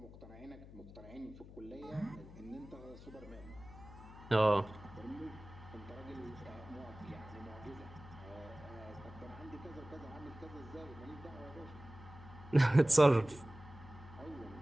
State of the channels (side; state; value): left; noise; hum, 16 dB below the sound